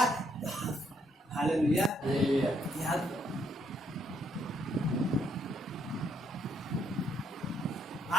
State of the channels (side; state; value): both; normal; correlation 0.72